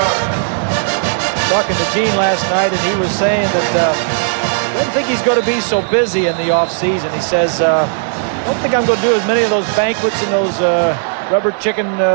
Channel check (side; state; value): left; silent; digital silence